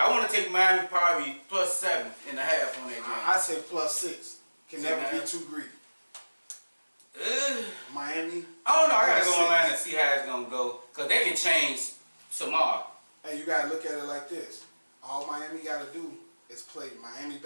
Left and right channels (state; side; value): inverted; both; correlation -1.00